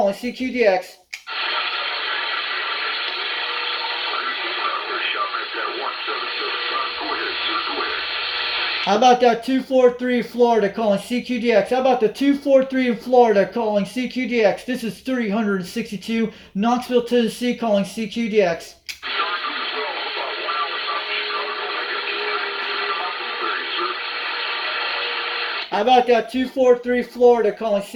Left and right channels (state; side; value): identical; both; correlation 1.00